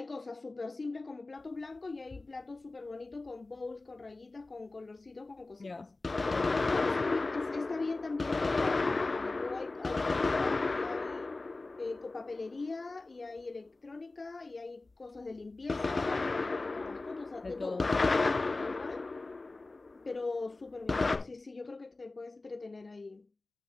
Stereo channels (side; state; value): right; quieter; 3.2 dB